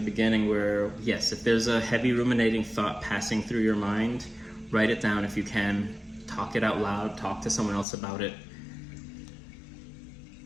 beginning, where yes, if there's a heavy ruminating thought passing through your mind, write it down if you can, talk it out loud, talk to someone else about it.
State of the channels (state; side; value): drops out; right; at 7.9 s